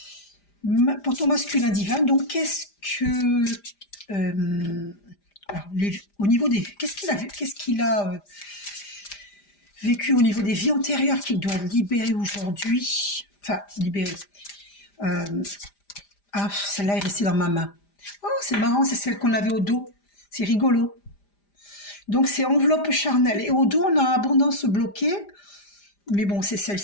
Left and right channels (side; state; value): right; late; 5.0 ms